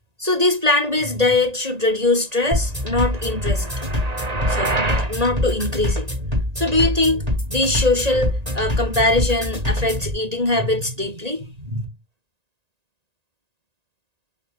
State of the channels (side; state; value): left; late; 1.9 ms